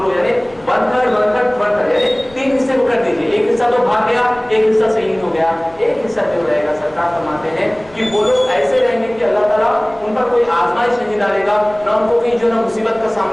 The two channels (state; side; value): noise; left; rumble, 25 dB below the sound